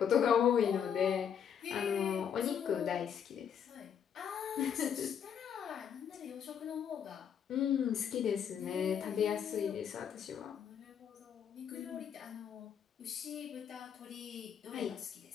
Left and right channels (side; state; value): right; quieter; 8.2 dB